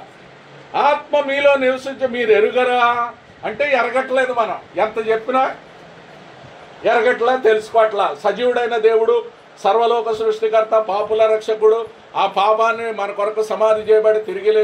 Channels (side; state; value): both; identical; correlation 1.00